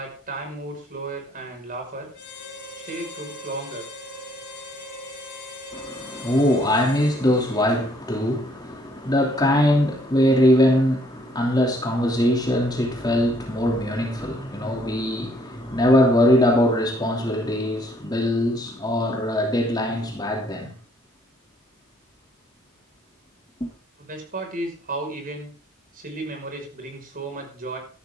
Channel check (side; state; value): both; normal; correlation 0.65